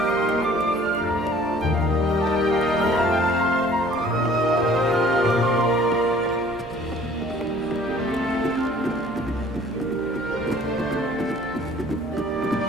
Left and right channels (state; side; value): noise; right; hum, 19 dB below the sound